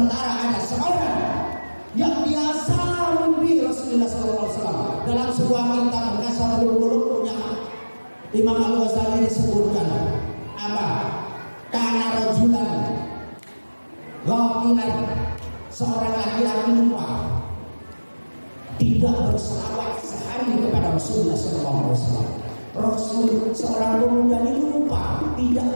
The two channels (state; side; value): inverted; both; correlation -1.00